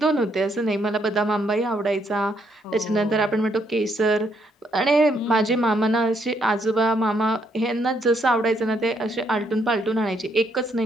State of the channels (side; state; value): both; normal; correlation 0.73